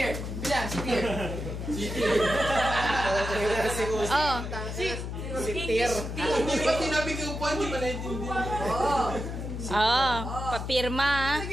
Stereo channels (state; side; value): noise; left; hum, 5 dB below the sound